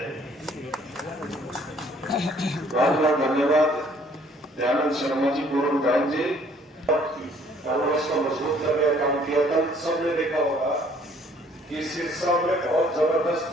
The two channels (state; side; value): normal; both; correlation 0.60